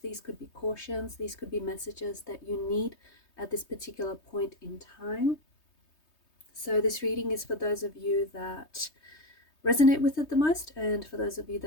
these could be cautions, these could be messages that you need at this particular point in time. So this reading is for those of you that resonate with it the most, and for those of you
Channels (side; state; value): right; late; 3.2 ms